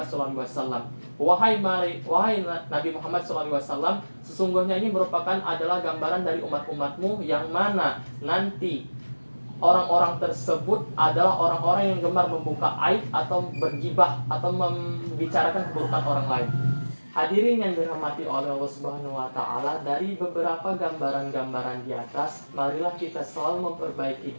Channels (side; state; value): both; inverted; correlation -1.00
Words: SAW, wahai Nabi Muhammad SAW, sesungguhnya ini merupakan adalah gambaran dari umat-umatmu yang mana nanti orang-orang tersebut adalah orang-orang yang gemar membuka aib atau bergibah atau membicarakan keburukan orang lain. Hadirin yang dirahmati oleh Allah Subhanahu wa taala, dari beberapa gambaran-gambaran di atas, marilah kita selalu memperbaiki